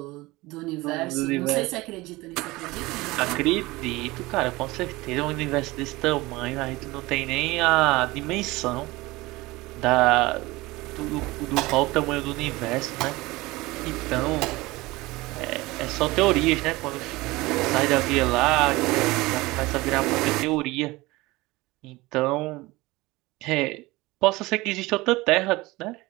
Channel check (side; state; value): left; quieter; 20.9 dB